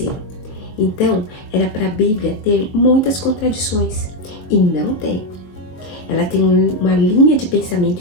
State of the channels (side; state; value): right; late; 22 ms